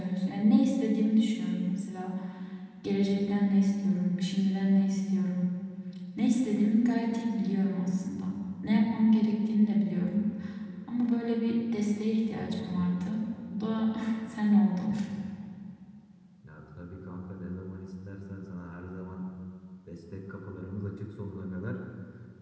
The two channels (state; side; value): identical; both; correlation 1.00